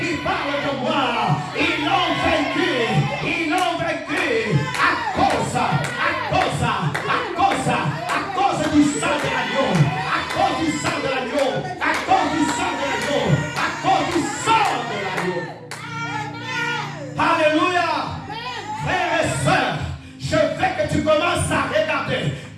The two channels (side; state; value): both; identical; correlation 1.00